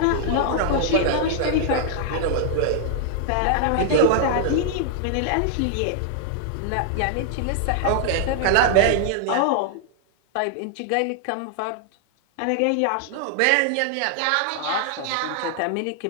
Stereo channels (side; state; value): both; different; correlation 0.00